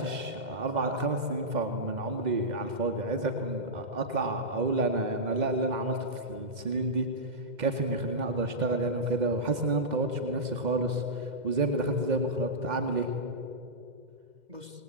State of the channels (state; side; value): late; left; 2.1 ms